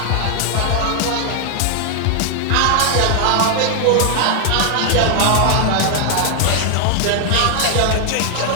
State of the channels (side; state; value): both; different; correlation 0.00